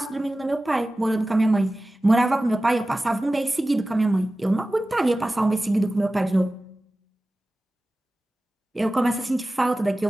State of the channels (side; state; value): both; normal; correlation 0.96